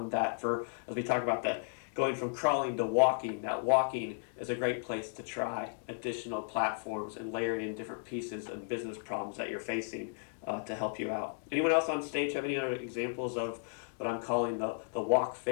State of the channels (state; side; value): silent; right; digital silence